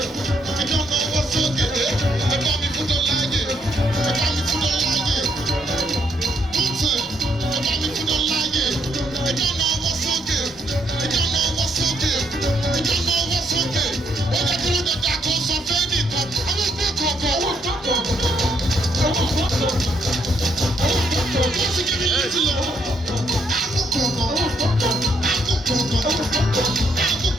Ìjọ́nà ọwọ́ sókè. Ẹ bá mi fún dọ́là yé. Ẹ bá mi fún dọ́là yé. One time. Ẹ bá mi fún dọ́là yé. Ìjọ́nà ọwọ́ sókè. Ìjọ́nà ọwọ́ sókè. Ìjọ́nà ọwọ́ sókè. Ó yẹ kí ló dé dàgbọ́ sọ fẹ́ nìkan. Àwọn ìgbẹ́ kọ̀ọ̀kan. What's it giving you to love?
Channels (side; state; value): both; normal; correlation 0.73